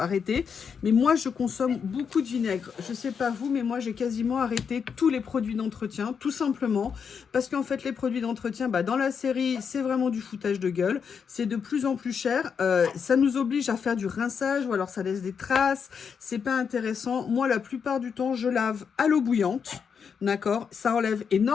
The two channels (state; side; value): quieter; right; 6.6 dB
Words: Mais moi, je consomme beaucoup de vinaigre. Je sais pas vous, mais moi, j'ai quasiment arrêté tous les produits d'entretien. Tout simplement. Parce qu'en fait, les produits d'entretien, dans la série, c'est vraiment du foutage de gueule. C'est de plus en plus cher. Ça nous oblige à faire du rinçage ou alors ça laisse des traces. C'est pas intéressant. Moi, la plupart du temps, je lave à l'eau bouillante. D'accord, ça enlève